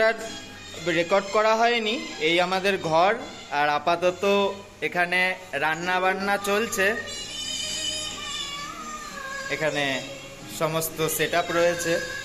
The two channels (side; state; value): both; identical; correlation 1.00